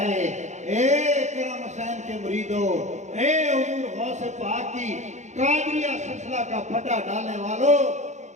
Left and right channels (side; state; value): left; late; 0.34 ms